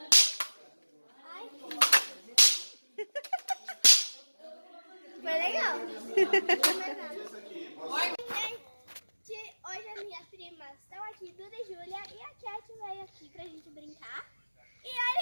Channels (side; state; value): both; inverted; correlation -1.00